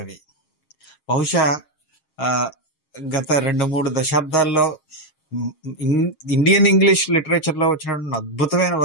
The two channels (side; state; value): right; late; 6.4 ms